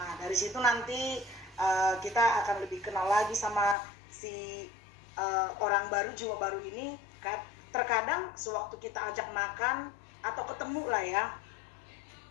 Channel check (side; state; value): right; drops out; at 3.8 s